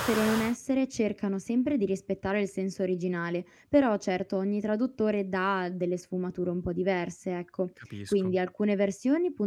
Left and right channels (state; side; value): identical; both; correlation 1.00